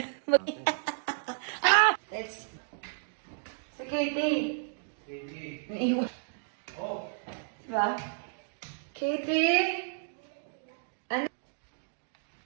Let's... Si Katie. Katie. Naiwan. Oh. Diba? Katie? Ano?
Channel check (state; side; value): silent; left; digital silence